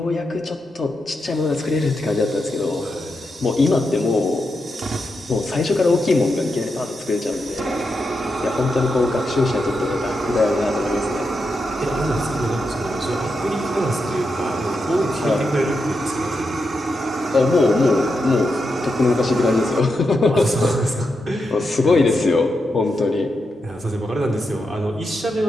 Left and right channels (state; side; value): normal; both; correlation 0.86